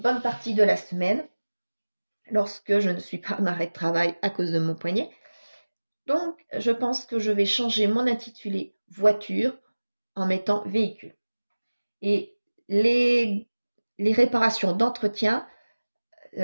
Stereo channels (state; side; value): inverted; both; correlation -1.00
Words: partie de la semaine lorsque je ne suis pas en arrêt de travail à cause de mon poignet. Donc je pense que je vais changer mon intitulé voiture en mettant véhicule. Et les réparations d'entretien